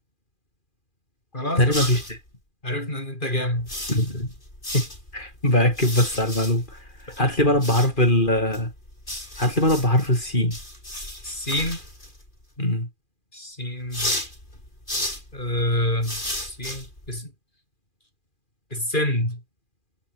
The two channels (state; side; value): late; right; 2.4 ms